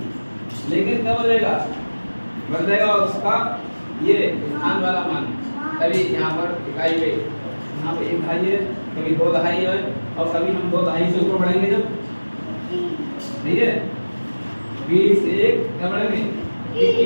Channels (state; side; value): inverted; both; correlation -1.00